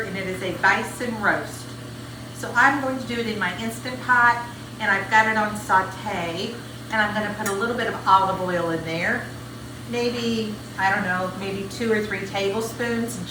and it is a bison roast. So I'm going to do it in my Instant Pot, and I've got it on saute, and I'm going to put a little bit of olive oil in there. Maybe, I don't know, maybe 2 or 3 tablespoons,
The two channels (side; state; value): both; identical; correlation 1.00